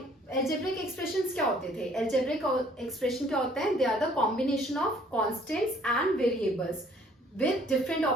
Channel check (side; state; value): both; normal; correlation 0.59